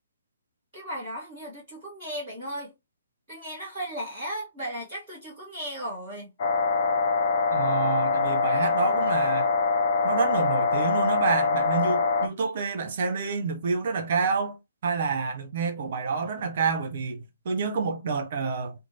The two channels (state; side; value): inverted; both; correlation -0.60